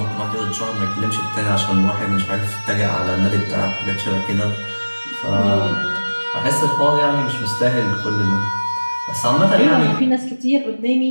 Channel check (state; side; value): inverted; both; correlation -1.00